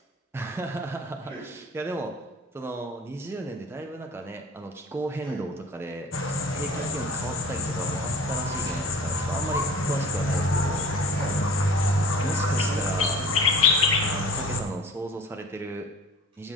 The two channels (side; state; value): both; normal; correlation 0.43